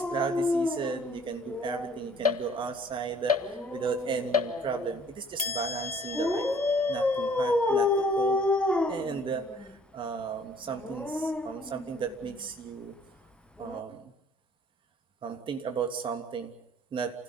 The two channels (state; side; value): normal; both; correlation 0.56